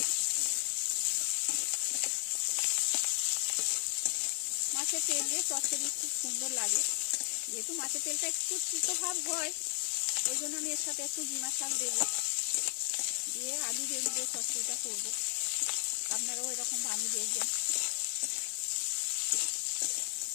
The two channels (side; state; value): right; silent; 55 dB below the other